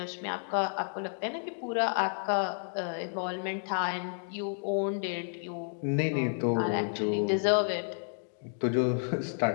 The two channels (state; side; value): silent; right; digital silence